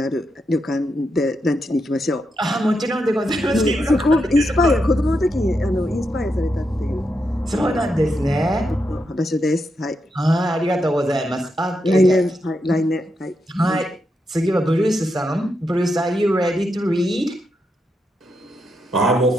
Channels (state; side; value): normal; both; correlation 0.84